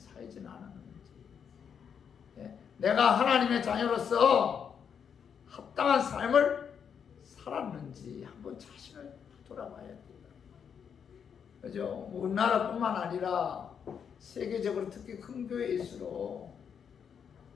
않았는지, 내가 하나님의 자녀로서 합당한 삶을 살았는지 한번 자신을 돌아봐야 돼요. 그죠? 우리나라뿐만 아니라 세계적으로 특히 큰 교회일수록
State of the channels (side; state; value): right; quieter; 7.4 dB